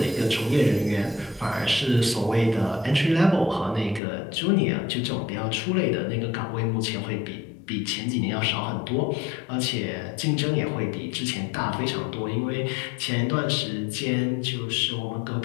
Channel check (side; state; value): right; drops out; at 4.0 s